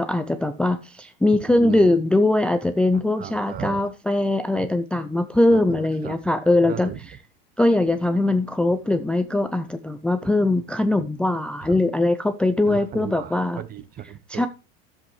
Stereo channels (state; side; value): normal; both; correlation 0.91